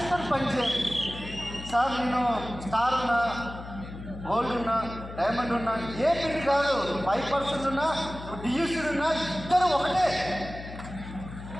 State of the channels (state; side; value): noise; left; hum, 12 dB below the sound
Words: పనిచేయాలి సార్. నేను స్టార్ ఉన్నా, గోల్డ్ ఉన్నా, డైమండ్ ఉన్నా, ఏ పిల్లి కాదు, 5% ఉన్నా, డియూసీడ్ ఉన్నా, ఇద్దరు ఒకటే.